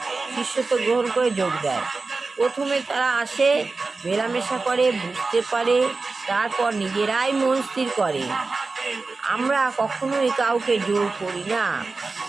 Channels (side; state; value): left; quieter; 3.9 dB